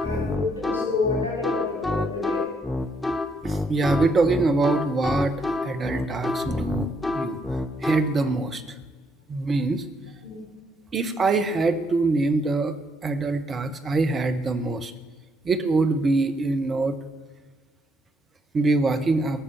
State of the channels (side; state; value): both; normal; correlation 0.74